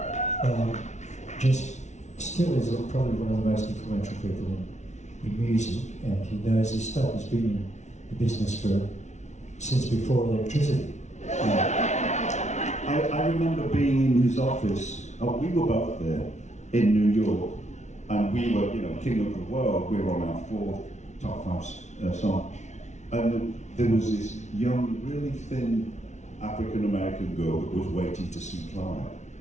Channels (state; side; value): late; right; 0.33 ms